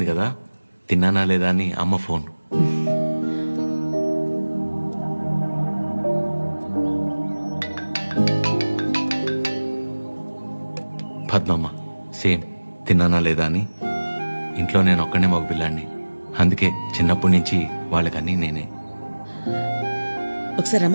కదా, తిన్నానా లేదా అని అమ్మ ఫోన్. పద్మమ్మ సేమ్ తిన్నానా లేదా అని. ఇంట్లో నేను ఒక్కనే మగ పిల్లాడిని, అందుకే చిన్నప్పటి నుంచి వాళ్ళకన్నీ నేనే. ఒకసారి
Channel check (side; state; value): both; inverted; correlation -1.00